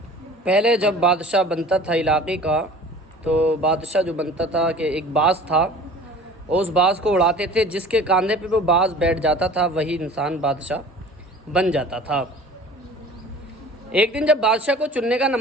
پہلے جب بادشاہ بنتا تھا علاقے کا، تو بادشاہ جو بنتا تھا کہ ایک باز تھا، اس باز کو اڑاتے تھے، جس کے کاندھے پہ وہ باز بیٹھ جاتا تھا وہی انسان بادشاہ بن جاتا تھا۔ ایک دن جب بادشاہ کو چننے کا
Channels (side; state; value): both; normal; correlation 0.44